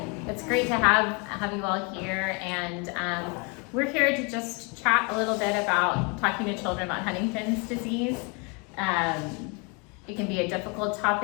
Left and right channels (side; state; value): right; quieter; 32.4 dB